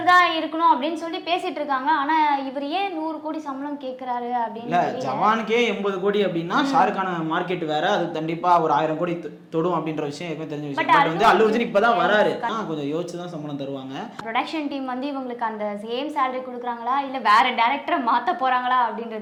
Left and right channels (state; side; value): identical; both; correlation 1.00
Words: தான் இருக்கணும் அப்படின்னு சொல்லி பேசிட்டு இருக்காங்க. ஆனா இவர் ஏன் 100 கோடி சம்பளம் கேட்கிறாரு அப்படின்னு. ஜவானுக்கே 80 கோடி அப்படின்னா ஷாருக்கான மார்க்கெட் வேற, அது கண்டிப்பா ஒரு 1000 கோடி தொடும் அப்படின்ற விஷயம் ஏற்கனவே தெரிஞ்ச விஷயம். பட் வந்து அல்லு அர்ஜுன் இப்பதான் வராரு, கொஞ்சம் யோசிச்சு தான் சம்பளம் தருவாங்க. ப்ரொடக்ஷன் டீம் வந்து இவங்களுக்கு அந்த சேம் salary கொடுக்குறாங்களா இல்ல வேற டைரக்டரை மாத்த போறாங்களா